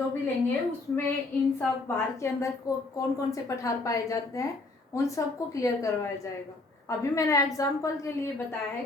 भी लेंगे उसमें इन सब भारत के अंदर कौन कौन से पठार पाए जाते हैं उन सबको क्लियर करवाया जाएगा। अभी मैंने एग्जाम्पल के लिए बताया है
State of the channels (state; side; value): quieter; right; 3.2 dB